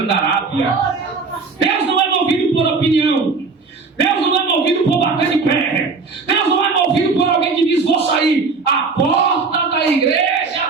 Deus não é movido por opinião. Deus não é movido por bater de pé. Deus não é movido por alguém que diz, vou sair. A porta da igreja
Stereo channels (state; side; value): quieter; left; 4.4 dB